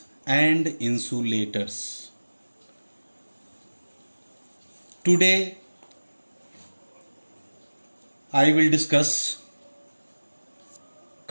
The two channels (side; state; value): both; inverted; correlation -1.00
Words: and insulators. Today I will discuss